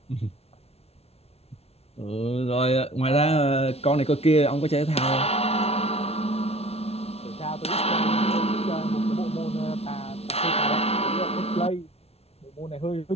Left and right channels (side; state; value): right; late; 0.30 ms